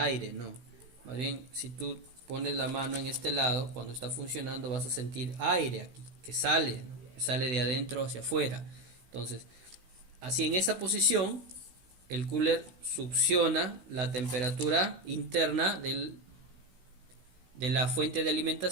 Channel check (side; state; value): left; late; 16 ms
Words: no. Más bien, si tú pones la mano en este lado, cuando está funcionando vas a sentir aire aquí, que sale, ¿no? Que sale de adentro hacia afuera. Entonces, así en esta posición, el cooler succiona la temperatura interna de la fuente de